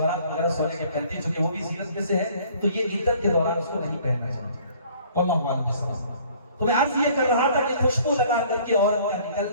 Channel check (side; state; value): both; inverted; correlation -0.55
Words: وغیرہ سونے کے پہنتے ہیں چونکہ وہ بھی زینت میں سے ہے، تو یہ عدت کے دوران اس کو نہیں پہننا چاہیے، واللہ اعلم۔ تو میں عرض یہ کر رہا تھا کہ خوشبو لگا کر کے عورت کا